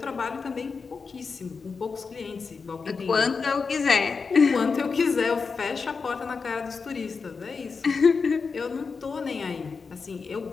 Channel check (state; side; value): quieter; right; 5.0 dB